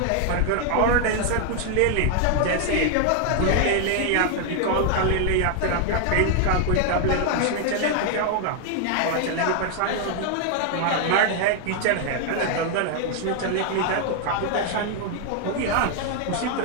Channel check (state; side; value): different; both; correlation 0.00